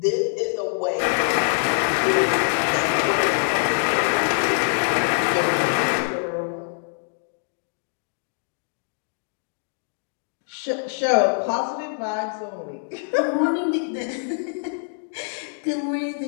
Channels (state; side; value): silent; right; digital silence